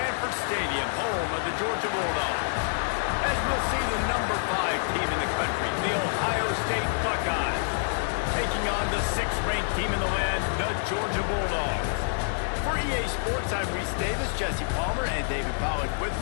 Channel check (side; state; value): right; silent; digital silence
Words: Stadium, home of the Georgia Bulldogs. As we'll see the number 5 team in the country, the Ohio State Buckeyes, taking on the 6th-ranked team in the land, the Georgia Bulldogs. For EA Sports, I'm Reese Davis, Jesse Palmer, and David Pollack with